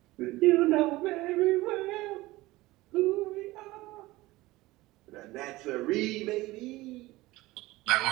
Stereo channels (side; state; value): left; quieter; 19.2 dB